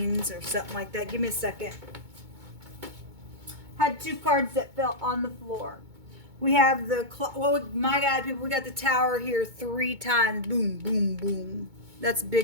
or something like that. Give me a second. Had two cards that fell on the floor. We have the, my God, people, we got the Tower here 3 times. Boom, boom, boom. That's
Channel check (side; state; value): left; late; 2.2 ms